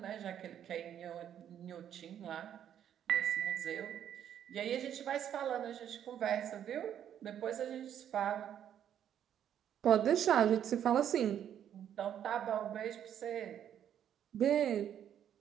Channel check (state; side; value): quieter; left; 9.8 dB